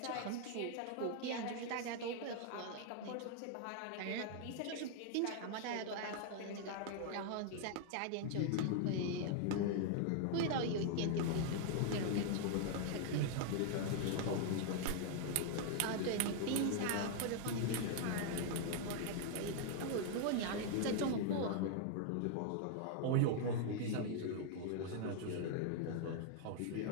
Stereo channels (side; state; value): both; different; correlation 0.00